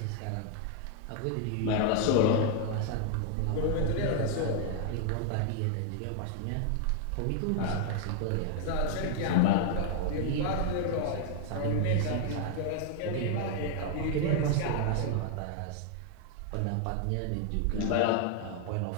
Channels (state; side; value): different; both; correlation 0.00